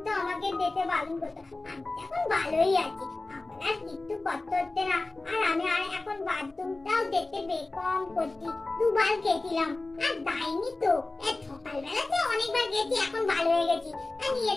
আমাকে দিতে ভালো হতো। আমি তো এখন ভালোই আছি, আমার আর কিছু করতে হচ্ছে না। আর আমি আর এখন বাথরুমটাও দেখতে বেকম করছি, দুবার গেছিলাম আর যাইনি তো। সকালবেলাতে অনেকবার গেছি, এখন ভালো হয়ে গেছি। আর নিয়ে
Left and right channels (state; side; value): quieter; right; 3.1 dB